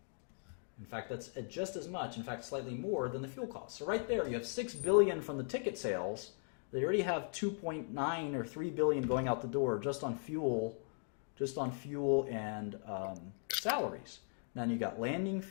In fact, that's just as much, in fact, slightly more than the fuel costs. So right there, you have $6 billion from the ticket sales. They already have 2.9 or 3 billion going out the door just on fuel and salaries. Then you got landing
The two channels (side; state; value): right; silent; 52 dB below the other